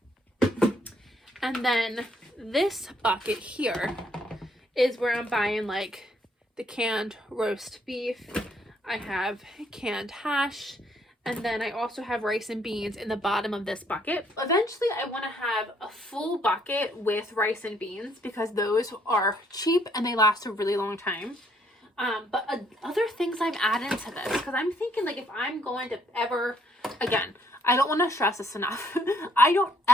And then this bucket here is where I'm buying like the canned roast beef. I have canned hash. And then I also have rice and beans in the bottom of this bucket. Eventually, I want to have a full bucket with rice and beans because those are cheap and they last a really long time. But other things I'm adding to this, because I'm thinking like if I'm going to ever, again, I don't want to stress this enough. I don't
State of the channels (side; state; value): both; normal; correlation 0.68